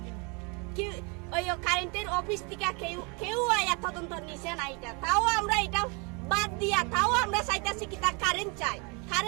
কি ওই কারেন্টের অফিস থেকে কেউ আয়া তদন্ত নিছে না এটা, তাও আমরা এটা বাদ দিয়া তাও আমরা চাইতাছি কি তা কারেন্ট চাই,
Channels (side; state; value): left; quieter; 31.6 dB